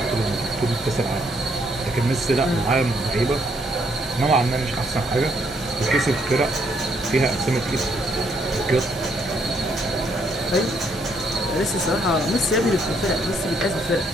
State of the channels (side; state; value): both; normal; correlation 0.71